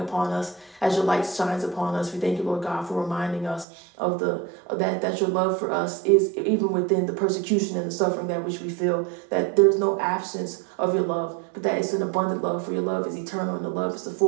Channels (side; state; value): left; drops out; at 3.7 s